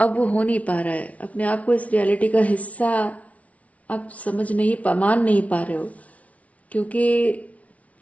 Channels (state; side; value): late; right; 0.067 ms